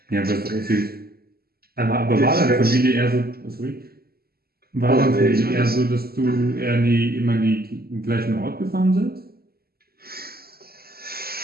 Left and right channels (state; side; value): late; left; 0.45 ms